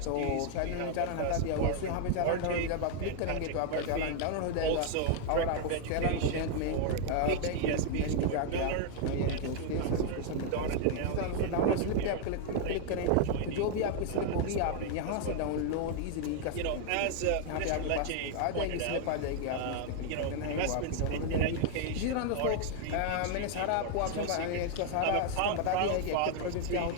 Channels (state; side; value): different; both; correlation 0.00